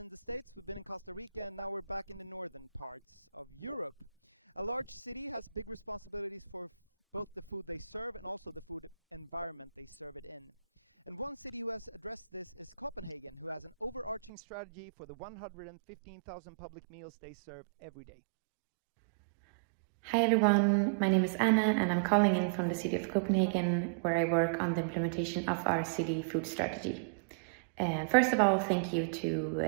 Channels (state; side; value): drops out; left; at 14.3 s